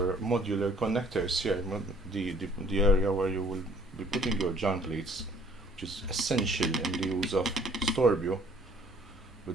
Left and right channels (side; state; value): both; normal; correlation 0.57